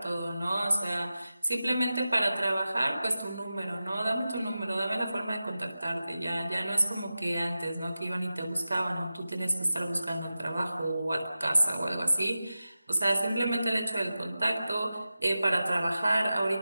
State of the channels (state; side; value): inverted; both; correlation -0.94